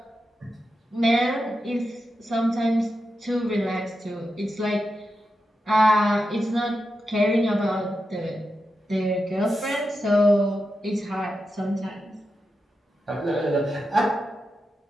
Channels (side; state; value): both; normal; correlation 0.89